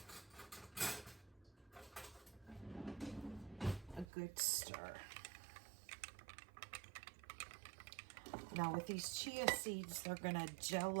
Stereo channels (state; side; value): drops out; left; at 4.0 s